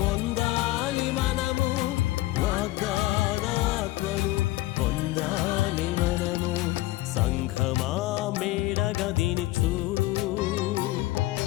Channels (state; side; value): quieter; right; 17.9 dB